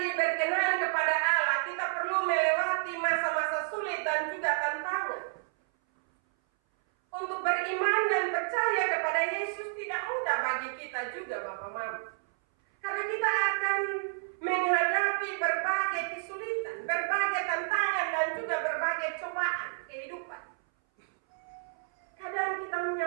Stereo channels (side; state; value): left; silent; 57 dB below the other